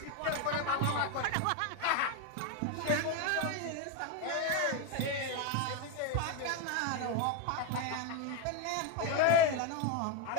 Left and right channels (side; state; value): both; different; correlation 0.02